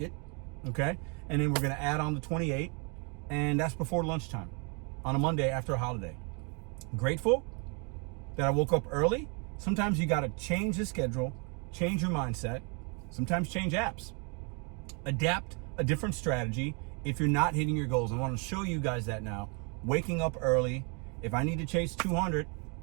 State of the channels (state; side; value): quieter; left; 34.5 dB